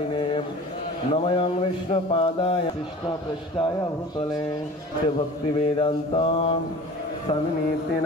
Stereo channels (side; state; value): both; normal; correlation 0.41